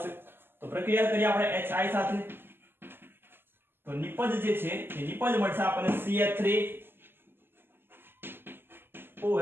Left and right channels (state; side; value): late; left; 0.10 ms